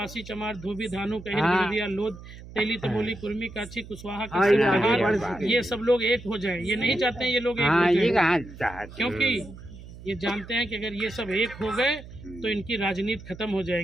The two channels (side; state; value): right; noise; hum, 16 dB below the sound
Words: चमार, धोबी, धानु, कहिर, गिरदिया, लोध, तेली, तमोली, कुर्मी, काची, कुशवाहा, ये सब लोग एक हो जाए। ये नहीं चाहते हैं ये लोग एक हो जाए, क्योंकि ये जानते हैं कि अगर ये सब एक हो गए तो इनकी राजनीति खत्म हो